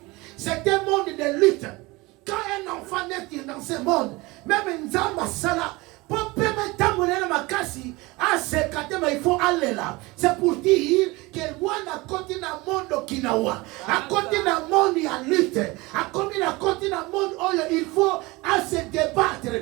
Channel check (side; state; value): left; quieter; 22.8 dB